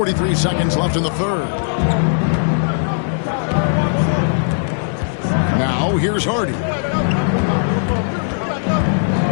seconds left in the third. Now here's Hardy.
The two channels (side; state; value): right; silent; digital silence